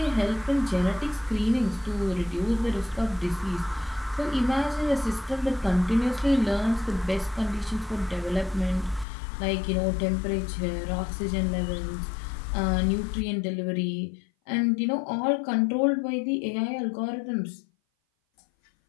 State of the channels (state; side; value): drops out; right; at 9.1 s